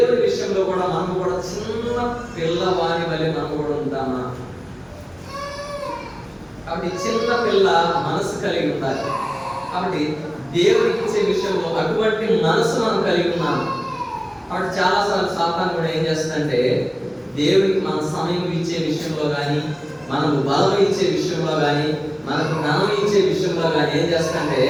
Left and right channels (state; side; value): identical; both; correlation 1.00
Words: విషయంలో కూడా మనం కూడా చిన్న పిల్లవాని వల్ల మనం కూడా ఉంటామా? కాబట్టి చిన్న పిల్ల మనసు కలిగి ఉండాలి. కాబట్టి దేవుడికి ఇచ్చే విషయంలో అటువంటి మనసు మనం కలిగి ఉన్నాము. కాబట్టి చాలాసార్లు సాతాను కూడా ఏం చేస్తుందంటే, దేవుడికి మన సమయం ఇచ్చే విషయంలో కానీ, మనకు బలం ఇచ్చే విషయంలో కానీ, మనకు జ్ఞానం ఇచ్చే విషయంలో కానీ ఏం చేస్తుందంటే,